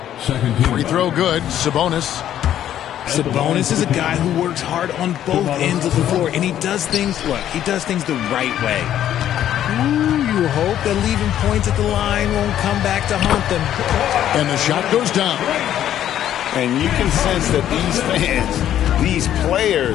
Second team Free throw good. Sabonis. Sabonis is a guy who works hard on both ends of the floor, and he does things the right way. Ooh, you hope that leaving points at the line won't come back to haunt them. And the shot goes down. And you can sense that these fans, these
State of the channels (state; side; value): quieter; right; 11.2 dB